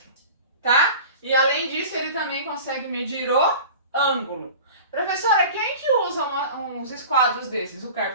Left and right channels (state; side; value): inverted; both; correlation -0.39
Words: tá? E além disso, ele também consegue medir o ângulo. Professora, quem que usa uns esquadros desses? O